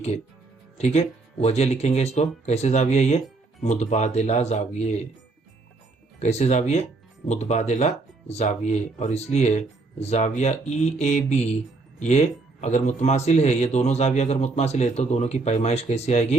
ठीक है, वजह लिखेंगे इसको कैसे, जाविया ये मुतबादिला जाविये, कैसे जाविये, मुतबादिला जाविये। और इसलिए जाविया ई ए बी ये अगर मुतमासिल है, ये दोनों जाविया अगर मुतमासिल है तो दोनों की पैमाइश कैसी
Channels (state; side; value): quieter; left; 3.6 dB